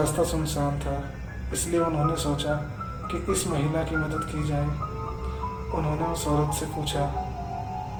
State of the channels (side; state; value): both; identical; correlation 1.00